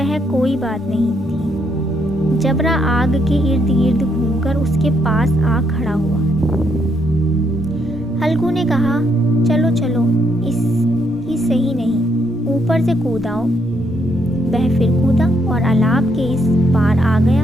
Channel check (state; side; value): normal; both; correlation 0.74